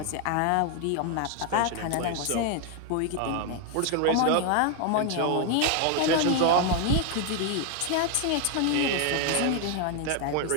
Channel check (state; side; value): different; both; correlation 0.01